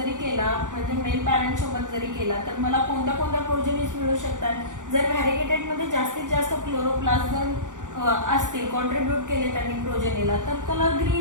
केला, म्हणजे मेल पॅरेंट सोबत जरी केला, तर मला कोणत्या कोणत्या प्रोजेनीज मिळू शकतात? जर व्हॅरिगेटेडमध्ये जास्तीत जास्त क्लोरोप्लास्ट जर असतील, कॉन्ट्रीब्यूट केले त्यांनी प्रोजेनीला, तर कलर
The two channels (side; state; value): left; late; 0.87 ms